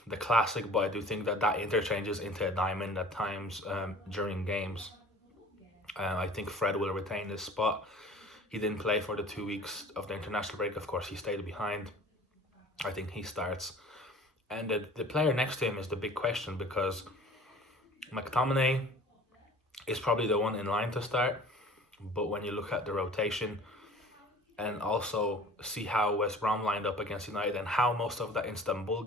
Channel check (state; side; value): normal; both; correlation 0.46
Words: the classic, but I do think that interchanges into a diamond at times during games. I think Fred will retain his spot. He didn't play for the 2 weeks of the international break. Of course, he stayed behind. I think he starts. And the player next to him is the big question, because McTominay is probably the one in line to start. But when you look at the rotation and also see how West Brom lined up against United and how most of that Istanbul